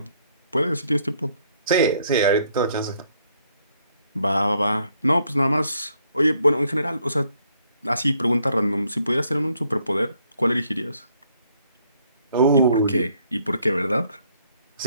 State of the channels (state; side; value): inverted; both; correlation -0.69